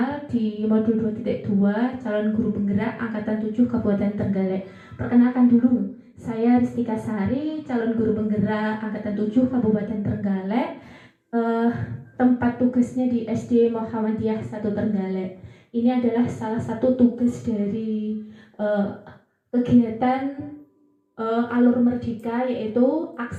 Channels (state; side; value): identical; both; correlation 1.00